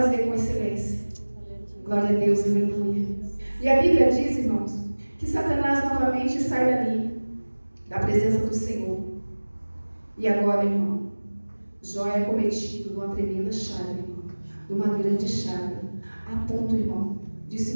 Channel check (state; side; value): inverted; both; correlation -1.00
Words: com excelência. Glória a Deus, aleluia. E a Bíblia diz, irmãos, que Satanás novamente sai dali, da presença do Senhor. E agora, irmão, Jó é cometido de uma tremenda chaga, irmão, de uma grande chaga, a ponto, irmão, de